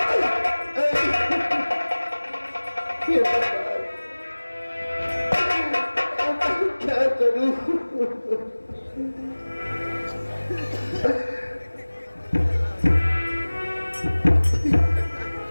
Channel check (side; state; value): both; inverted; correlation -1.00